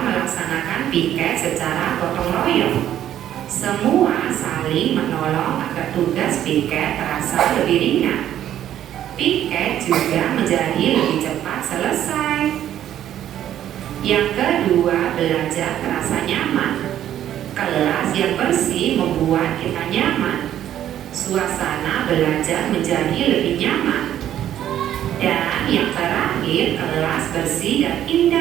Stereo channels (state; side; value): quieter; left; 11.3 dB